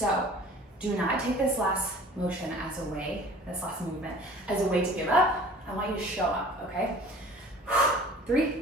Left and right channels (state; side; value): normal; both; correlation 0.46